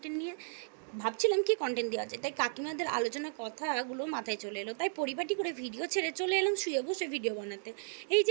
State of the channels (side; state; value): left; silent; digital silence